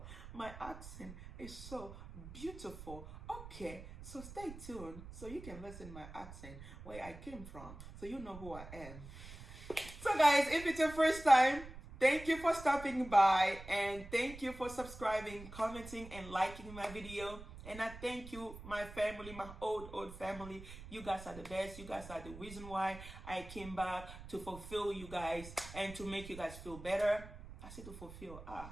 My accent is so beautiful. Okay, so stay tuned so you can listen my accent, where I came from, so you know who I am. So guys, if it's your first time, thank you for stopping by, and thank you for subscribing, commenting, and liking my video. And I thank you, my family, my old family. You guys are the best. You guys are the reason why I came back, to fulfill you guys and to make you guys feel better. I said to fulfill.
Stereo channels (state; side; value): noise; right; rumble, 14 dB below the sound